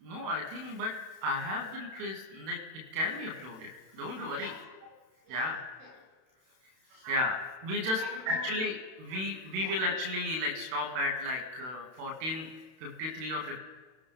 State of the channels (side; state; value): left; late; 32 ms